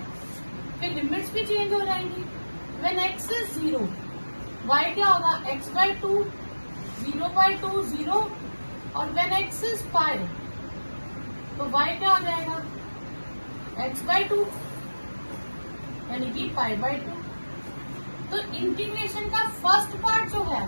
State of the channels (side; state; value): both; inverted; correlation -1.00